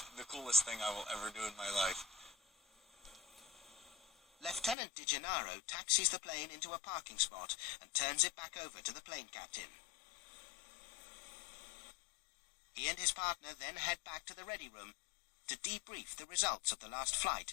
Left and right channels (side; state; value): right; drops out; at 4.8 s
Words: the coolest thing I will ever do in my life. Lieutenant DiGennaro taxis the plane into a parking spot and turns it back over to the plane captain. He and his partner then head back to the ready room to debrief the results of the last